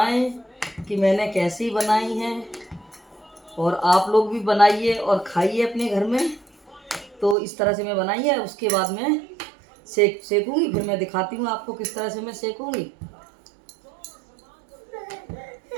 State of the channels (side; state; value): left; drops out; at 7.4 s